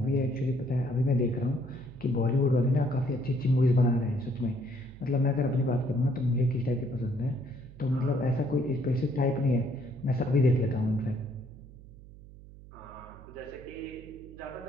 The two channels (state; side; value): noise; right; hum, 19 dB below the sound